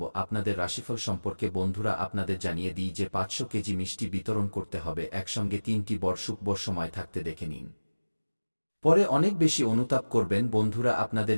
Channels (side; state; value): both; inverted; correlation -1.00